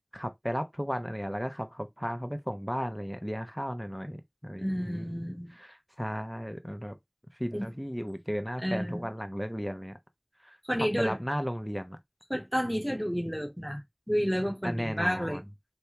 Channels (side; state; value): both; identical; correlation 1.00